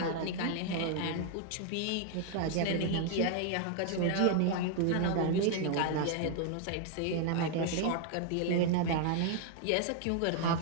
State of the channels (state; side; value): different; both; correlation 0.00